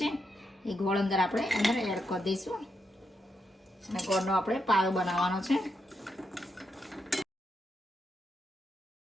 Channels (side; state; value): both; normal; correlation 0.83